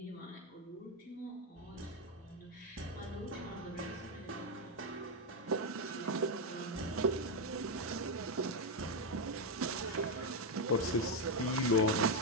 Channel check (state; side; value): normal; both; correlation 0.05